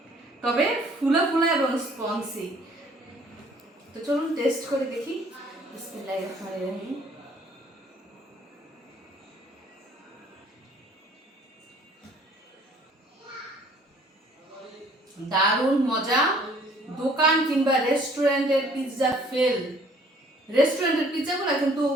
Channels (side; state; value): both; normal; correlation 0.57